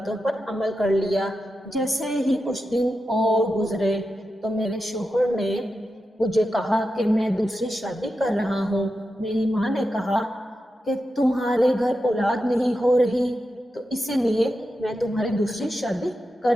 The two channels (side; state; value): both; normal; correlation 0.89